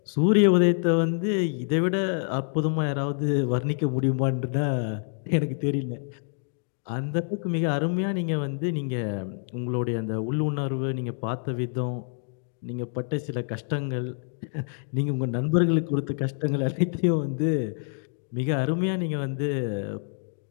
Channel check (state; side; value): silent; right; 60 dB below the other